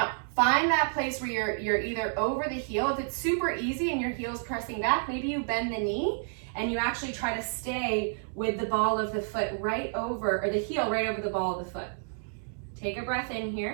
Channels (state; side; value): silent; left; digital silence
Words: find that place where you're either over the heel. If it's super easy and your heel's pressing back, maybe you bend the knee and you actually try to stay with the ball of the foot right over, or the heel right over the ball of the foot. Take a breath in